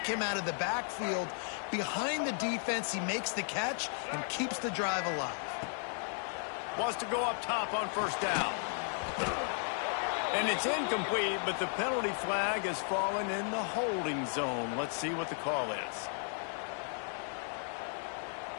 him out of the backfield. Behind the defense, he makes the catch and keeps the drive alive. Wants to go up top on 1st down. And it's incomplete, but the penalty flag has fallen in the holding zone. Let's see what the call is.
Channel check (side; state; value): right; silent; 55 dB below the other